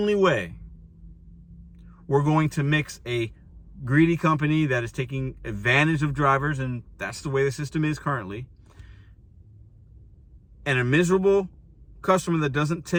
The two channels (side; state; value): both; identical; correlation 1.00